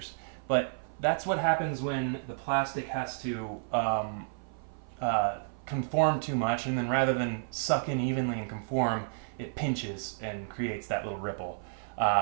But that's what happens when the plastic has to conform too much, and then rather than suck in evenly and conform, it pinches and creates that little ripple.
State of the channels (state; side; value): silent; left; 55 dB below the other